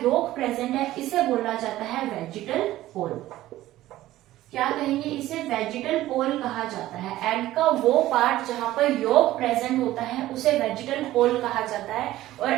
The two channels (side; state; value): left; quieter; 15.2 dB